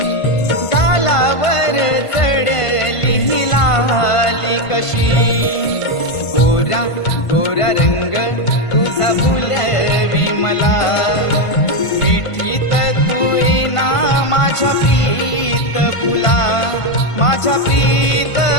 गालावर चढली ही लाली कशी गोरा गोरा रंग तुझा भुलवी मला मिठीत तू येना माझ्या प्रीत फुला माझ्या प्रीत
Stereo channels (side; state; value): right; late; 1.5 ms